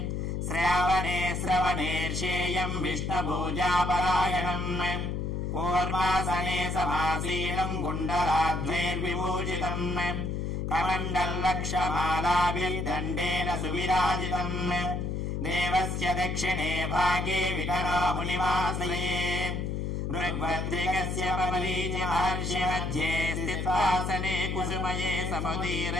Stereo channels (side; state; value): left; noise; hum, 2 dB below the sound